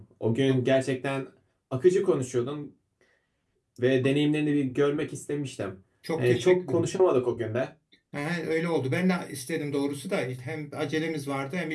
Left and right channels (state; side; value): identical; both; correlation 1.00